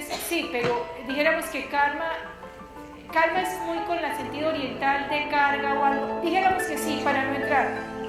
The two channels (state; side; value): identical; both; correlation 1.00